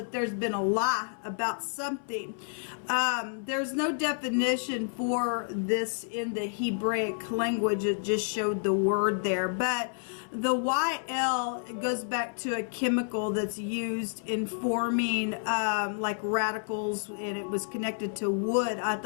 there's been a lie about something. There's no definition for this in the Hebraic language. It just showed the word there, but the YL goes back to a chemical that's used in forming like radicals, and it was connected to wood. I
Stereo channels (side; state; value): right; silent; 58 dB below the other